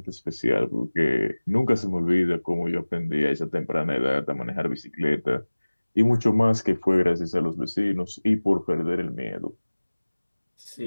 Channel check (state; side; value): inverted; both; correlation -1.00